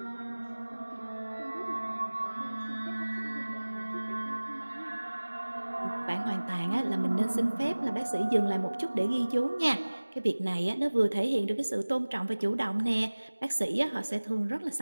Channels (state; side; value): inverted; both; correlation -1.00